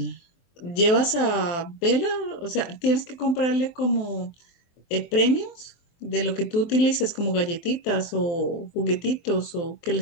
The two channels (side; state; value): right; late; 23 ms